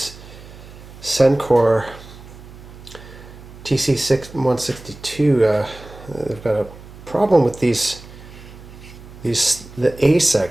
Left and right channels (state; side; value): noise; right; hum, 18 dB below the sound